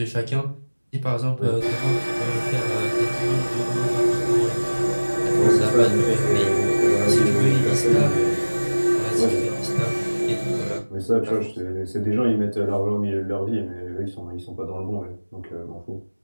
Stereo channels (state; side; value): inverted; both; correlation -1.00